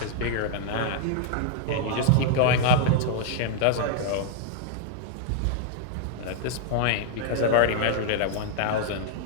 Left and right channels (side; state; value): both; different; correlation -0.01